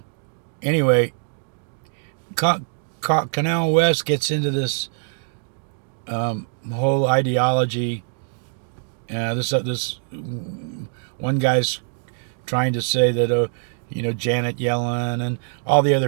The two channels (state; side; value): silent; left; digital silence